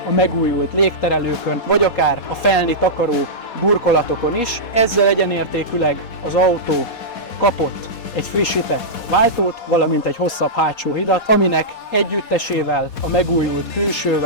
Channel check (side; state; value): right; late; 4.2 ms